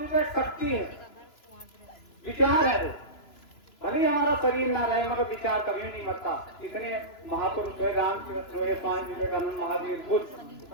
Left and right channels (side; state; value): right; late; 3.0 ms